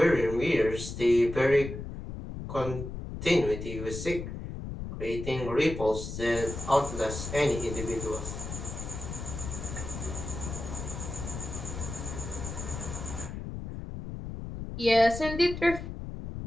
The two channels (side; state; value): left; noise; rumble, 7 dB below the sound